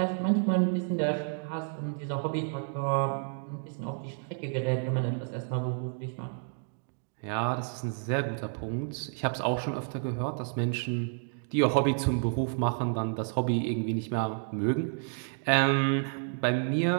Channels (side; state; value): left; silent; 58 dB below the other